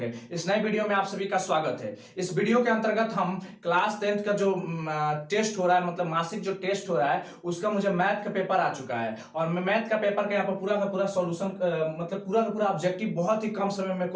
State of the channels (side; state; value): both; identical; correlation 1.00